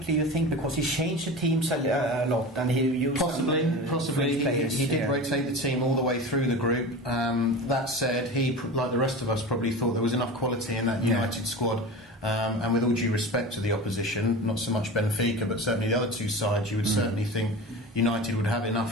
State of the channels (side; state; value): both; normal; correlation 0.31